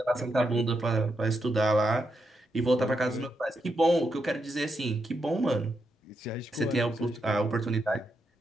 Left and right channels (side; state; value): both; normal; correlation 0.83